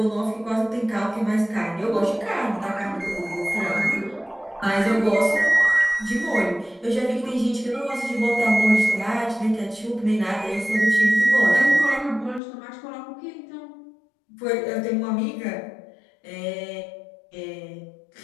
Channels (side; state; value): right; drops out; at 12.4 s